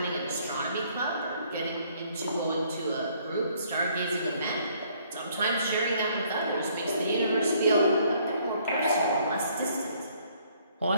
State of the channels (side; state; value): both; inverted; correlation -0.63